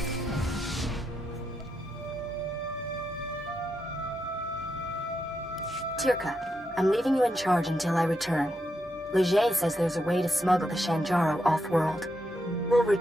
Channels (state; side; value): normal; both; correlation 0.83